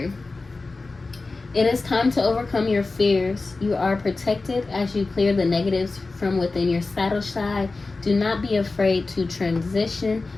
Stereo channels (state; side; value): quieter; right; 3.6 dB